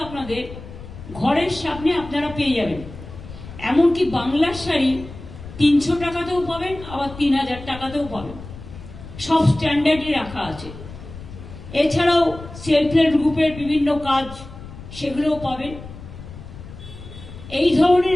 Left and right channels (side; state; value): left; noise; rumble, 14 dB below the sound